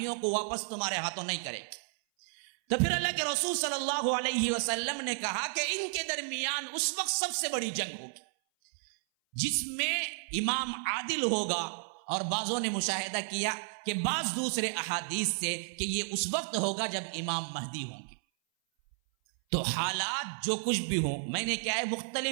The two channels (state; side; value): silent; left; 56 dB below the other